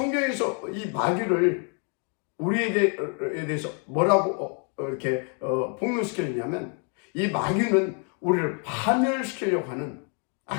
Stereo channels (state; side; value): quieter; right; 39.7 dB